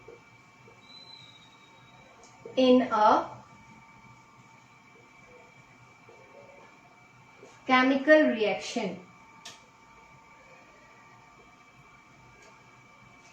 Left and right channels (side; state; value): both; identical; correlation 1.00